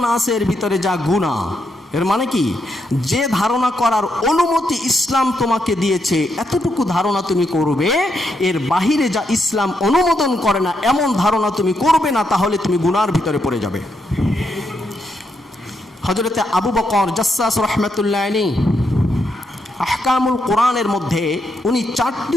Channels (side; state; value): both; normal; correlation 0.80